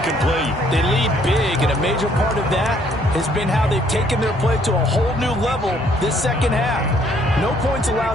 They lead big, and a major part of that has been how they've taken their play to a whole new level this second half. No points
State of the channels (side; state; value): both; normal; correlation 0.64